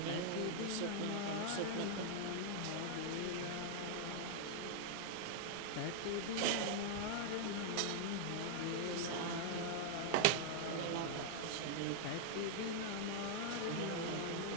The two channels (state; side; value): different; both; correlation 0.00